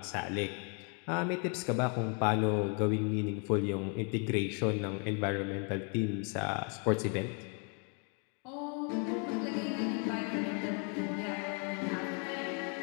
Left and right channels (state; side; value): quieter; right; 38.6 dB